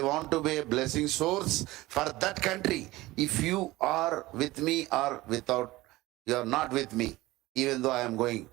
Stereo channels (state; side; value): quieter; left; 18.9 dB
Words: want to be a blessing source for that country. If you are with me or without, you are not with me, even though I'm going.